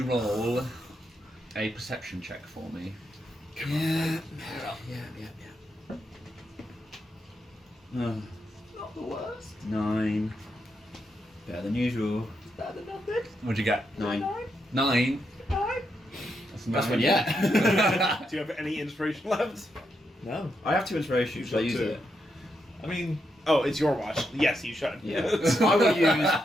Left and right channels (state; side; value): normal; both; correlation 0.82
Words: roll a perception check for me? Yeah. Not the worst. 9. Better than usual. Better than nothing. What'd you get? 9. 9. That's one yet. Do you have any inspiration left? No. I have 2 inspiration. Should I use it? I mean, Oh, it's your watch. Yes, you should. Yeah. I will use